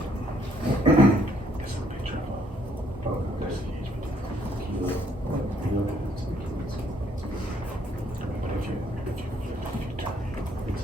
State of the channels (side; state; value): both; normal; correlation 0.67